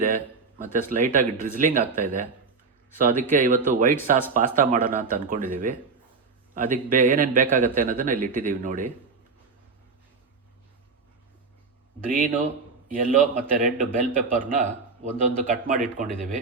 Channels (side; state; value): left; quieter; 4.5 dB